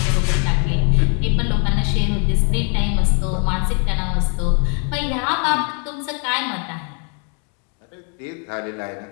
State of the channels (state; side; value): quieter; right; 37.8 dB